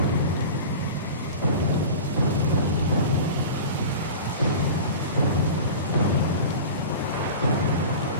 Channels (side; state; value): both; inverted; correlation -0.34